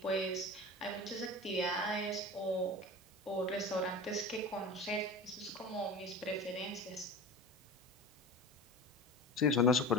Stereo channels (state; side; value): normal; both; correlation 0.32